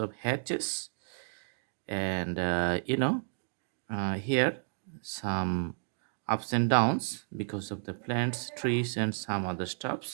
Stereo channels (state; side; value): silent; left; digital silence